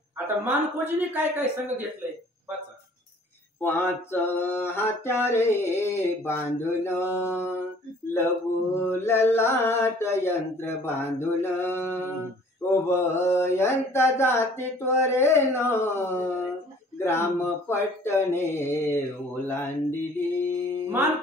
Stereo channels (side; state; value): both; normal; correlation 0.54